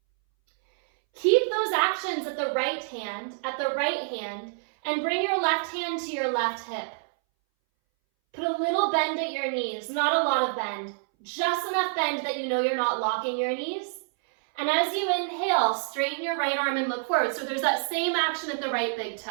Keep those actions at the right hand, and bring your left hand to your left hip. Put a little bend at your knees, not a lot of bend, just enough bend that you know you're not locking your knees. And as you inhale, straighten your right arm and look forward. So there's that same action at the right big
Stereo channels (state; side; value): silent; left; 60 dB below the other